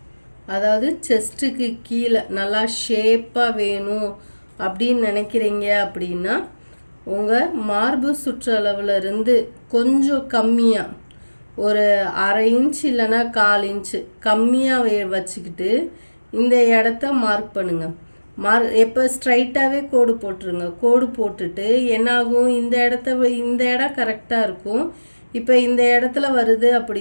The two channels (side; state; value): both; inverted; correlation -1.00